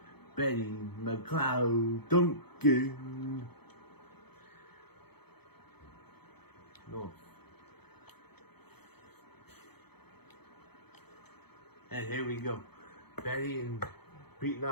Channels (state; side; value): late; right; 0.98 ms